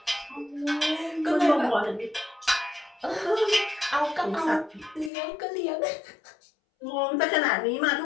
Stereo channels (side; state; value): right; drops out; at 5.1 s